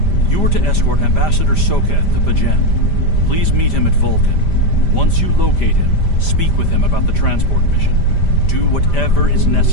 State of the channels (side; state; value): right; late; 5.0 ms